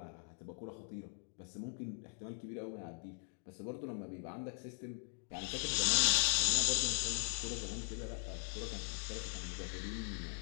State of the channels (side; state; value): right; silent; 51 dB below the other